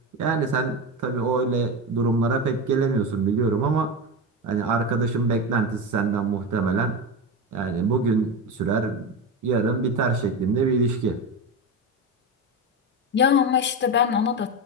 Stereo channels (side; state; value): both; normal; correlation 0.19